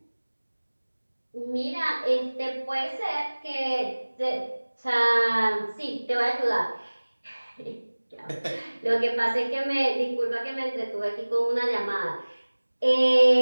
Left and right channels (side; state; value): both; inverted; correlation -1.00